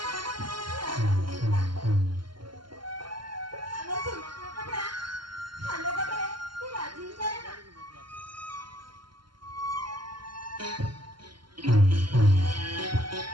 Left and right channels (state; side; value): late; left; 0.72 ms